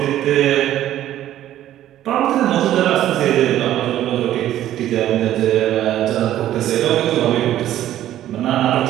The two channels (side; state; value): left; quieter; 12.7 dB